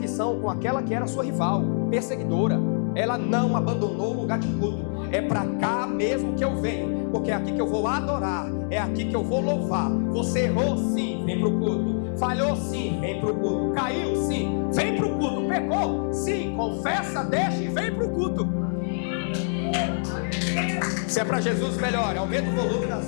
com aquela que era sua rival, perseguidora, ela não abandonou o lugar de culto. É para cá mesmo que eu venho, porque é aqui que eu vou adorar, é aqui que eu vou louvar. Você errou sim, vem para o culto. Falhou sim, vem para o culto. Caiu sim, vem para o culto. Pecou sim, confessa, deixa e vem para o culto. Se é para Jesus, melhor, aumenta o volume da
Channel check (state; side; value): silent; right; digital silence